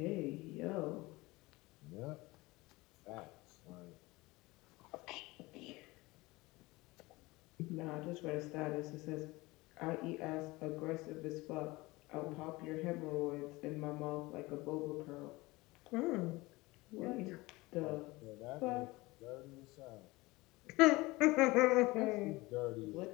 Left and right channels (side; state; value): right; quieter; 21.7 dB